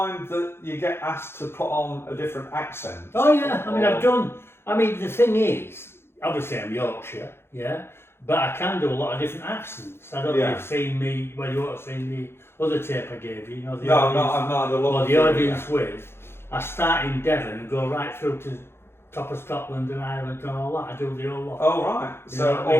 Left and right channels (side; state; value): right; late; 0.12 ms